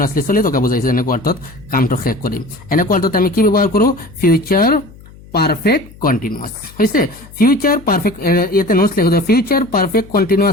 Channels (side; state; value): left; noise; hum, 22 dB below the sound